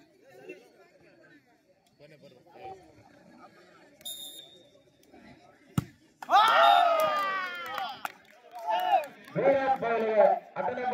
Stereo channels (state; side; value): identical; both; correlation 1.00